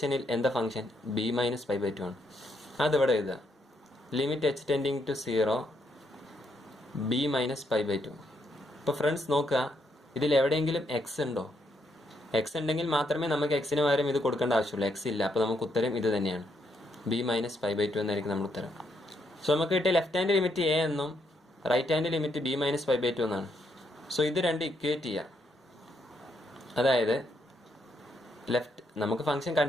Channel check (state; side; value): normal; both; correlation 0.76